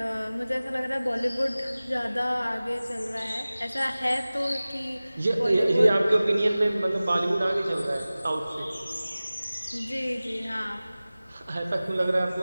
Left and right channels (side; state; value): both; inverted; correlation -0.98